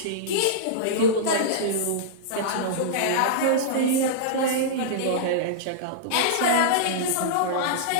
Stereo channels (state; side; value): different; both; correlation -0.03